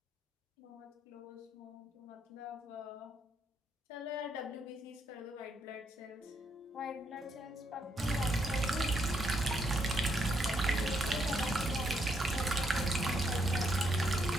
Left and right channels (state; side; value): normal; both; correlation 0.76